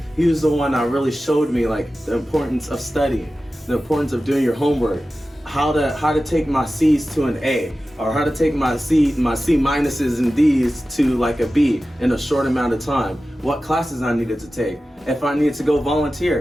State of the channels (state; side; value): normal; both; correlation 0.95